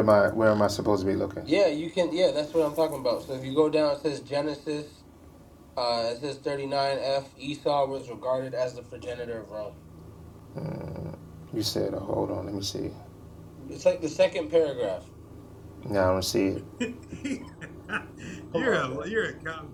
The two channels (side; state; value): both; identical; correlation 1.00